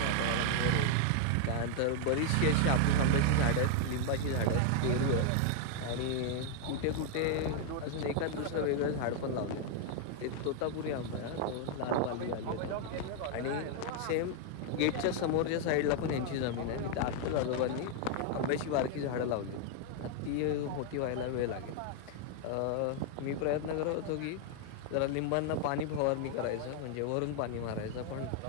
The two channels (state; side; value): different; both; correlation 0.00